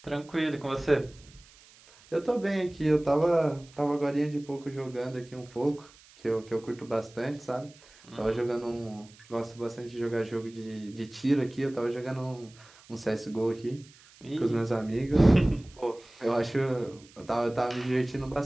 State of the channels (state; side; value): noise; right; hiss, 25 dB below the sound